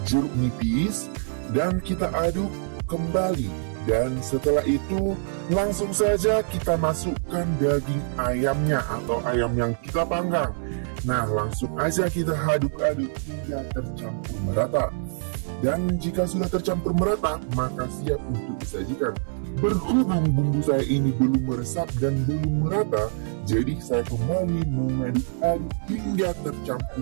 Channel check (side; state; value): left; silent; digital silence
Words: jeruk nipis dan kita aduk kembali. Dan setelah itu langsung saja kita masukkan daging ayamnya atau ayam yang kita panggang. Nah, langsung aja kita aduk-aduk hingga tercampur merata. Dan jika sudah tercampur merata, maka siap untuk disajikan. Berhubung bumbu saya ini belum meresap dan belum merata, jadi saya kembali mengaduk-aduk hingga